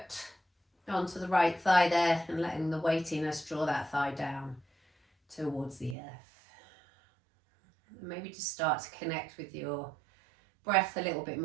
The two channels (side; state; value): left; drops out; at 6.0 s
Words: onto the right thigh there and letting the weightiness draw that thigh down towards the earth. And maybe just start to connect with your breath a little bit